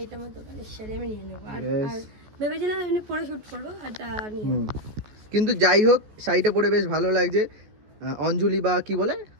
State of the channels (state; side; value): late; left; 14 ms